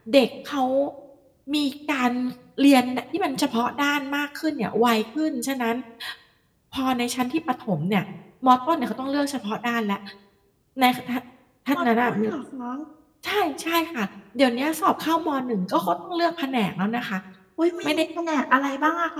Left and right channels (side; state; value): both; identical; correlation 1.00